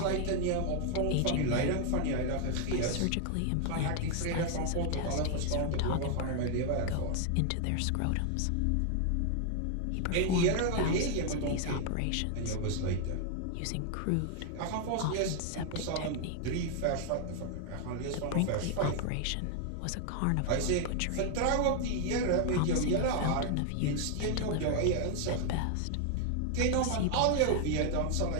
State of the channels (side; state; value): both; different; correlation 0.00